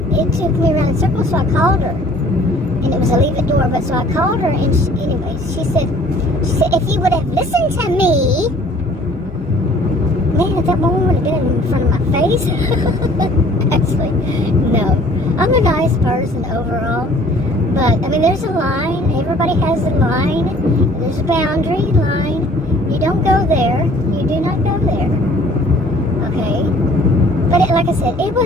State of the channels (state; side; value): normal; both; correlation 0.53